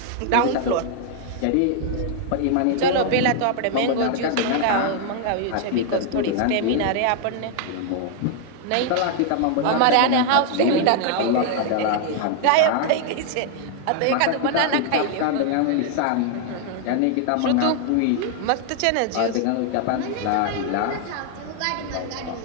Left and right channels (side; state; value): both; different; correlation 0.00